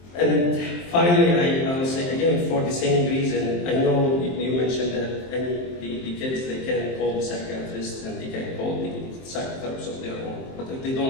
And finally, I will say again, for the same reason, I know you mentioned that the kids, they can call the psychiatrist and they can call the psychotherapists of their own. But if they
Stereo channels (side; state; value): right; late; 23 ms